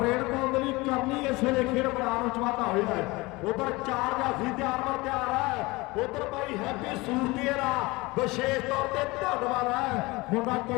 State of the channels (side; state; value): right; quieter; 22.7 dB